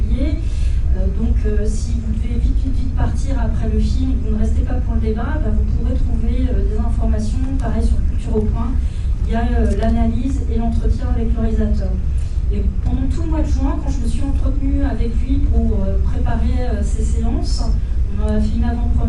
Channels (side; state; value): both; identical; correlation 1.00